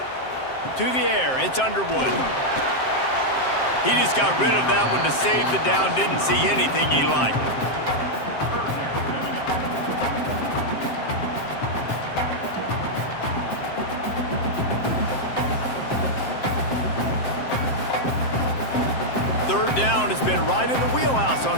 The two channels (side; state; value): right; late; 7.6 ms